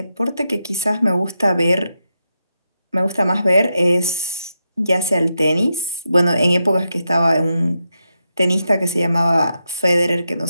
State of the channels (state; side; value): inverted; both; correlation -0.86